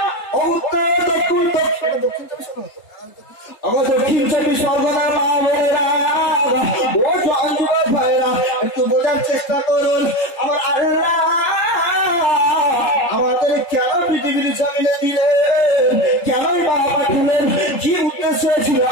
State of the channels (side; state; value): right; late; 3.3 ms